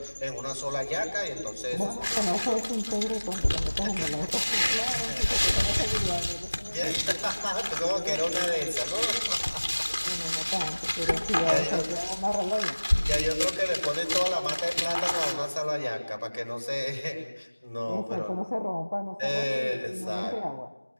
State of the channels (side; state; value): both; inverted; correlation -1.00